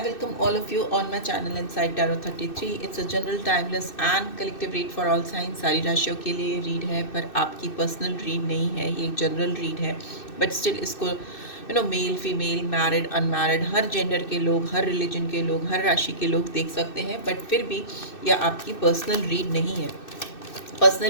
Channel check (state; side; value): late; right; 2.6 ms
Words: welcome all of you on my channel Inside Tarot 33. It's a general, timeless and collective read for all signs. सारी राशियों के लिए read है, पर आपकी personal read नहीं है, ये एक जनरल रीड है. बट स्टिल इसको मेल फीमेल मैरिड अनमैरिड हर जेंडर के लोग, हर रिलीजन के लोग, हर राशि के लोग देख सकते हैं. बट फिर भी यह आपकी पर्सनल रीड नहीं है.